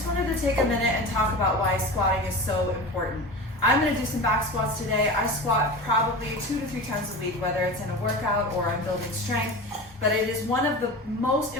wanted to take a minute and talk about why squatting is so important. I'm going to do some back squats today. I squat probably 2 to 3 times a week, whether it's in a workout or I'm building strength, but it is one of the most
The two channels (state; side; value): normal; both; correlation 0.30